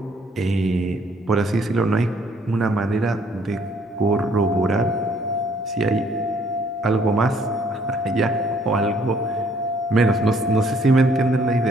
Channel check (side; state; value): both; normal; correlation 0.64